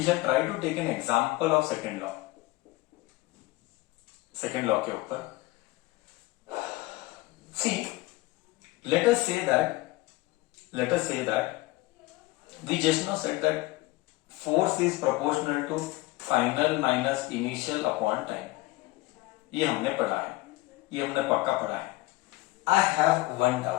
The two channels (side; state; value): right; quieter; 19.8 dB